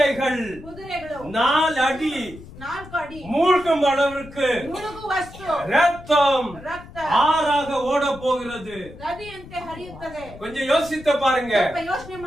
ಕುದುರೆಗಳು 4 அடி 4 ಅಡಿ மூழ்கும் அளவிற்கு ಮುಳುಗುವಷ್ಟು ரத்தம் ರಕ್ತ ஆறாக ஓட போகிறது. ನದಿಯಂತೆ ಹರಿಯುತ್ತದೆ. கொஞ்சம் யோசித்து பாருங்க. ಸ್ವಲ್ಪ ಯೋಚನೆ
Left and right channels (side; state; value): left; noise; rumble, 17 dB below the sound